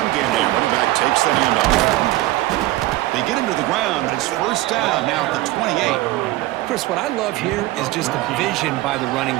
game, the running back takes the handoff. They get him to the ground, but it's first down now at the 28. Chris, what I love here is just the vision by the running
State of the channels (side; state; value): left; quieter; 17.4 dB